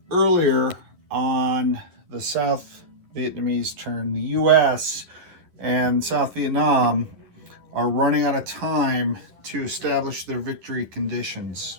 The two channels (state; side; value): late; left; 11 ms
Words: earlier on the South Vietnamese turn, the U.S. and South Vietnam are running out of time to establish their victory conditions.